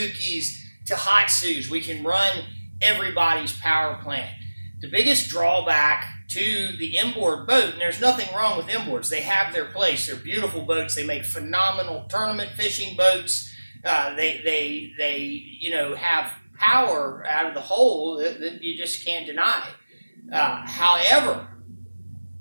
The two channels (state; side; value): inverted; both; correlation -1.00